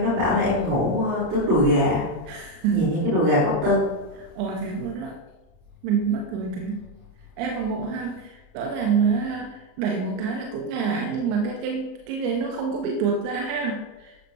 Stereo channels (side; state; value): left; late; 33 ms